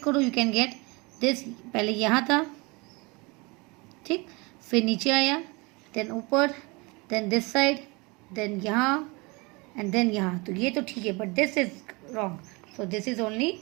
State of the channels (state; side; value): quieter; left; 26.8 dB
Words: करो, यू कैन गेट दिस. पहले यहाँ था, ठीक, फिर नीचे आया, देन ऊपर, देन दिस साइड, देन यहाँ, एंड देन यहाँ. तो ये तो ठीक है, but this is wrong. So this is only